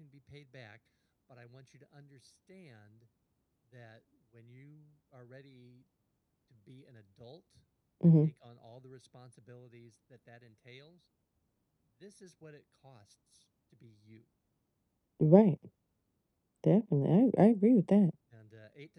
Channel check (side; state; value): both; identical; correlation 1.00